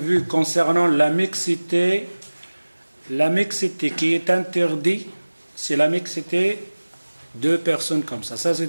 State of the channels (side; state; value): both; inverted; correlation -1.00